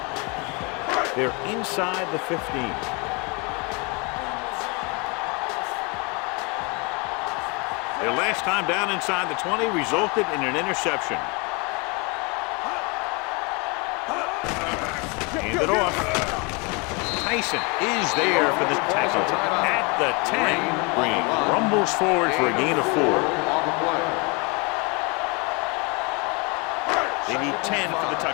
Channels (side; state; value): right; quieter; 30.1 dB